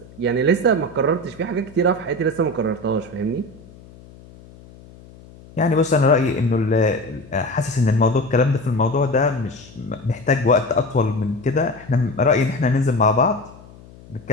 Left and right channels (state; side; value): noise; left; hum, 22 dB below the sound